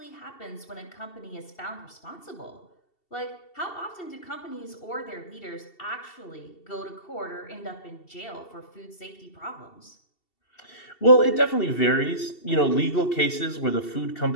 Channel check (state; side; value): late; right; 2.7 ms